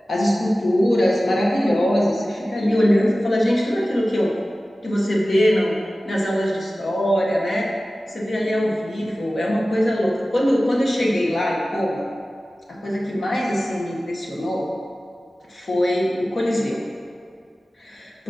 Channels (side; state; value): both; normal; correlation 0.96